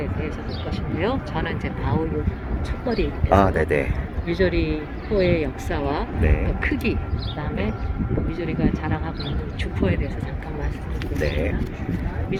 대해서 볼 것인데요. 저는 이제 바우유 첫머리에서 아, 네네. 미조리호의 역사와 네. 또 크기, 그다음에 미조리가 자랑하고 있는 주포에 대해서 잠깐 말씀드리겠습니다.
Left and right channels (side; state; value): both; identical; correlation 1.00